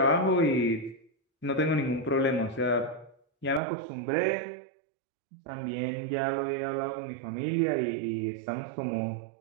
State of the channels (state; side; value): drops out; left; at 3.6 s